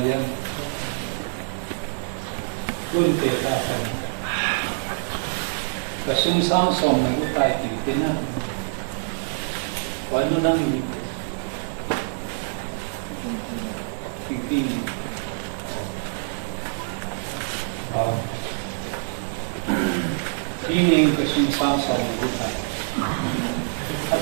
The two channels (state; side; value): silent; left; 62 dB below the other